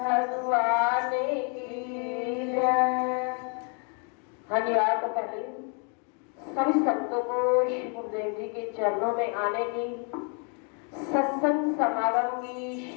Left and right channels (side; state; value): right; quieter; 38.6 dB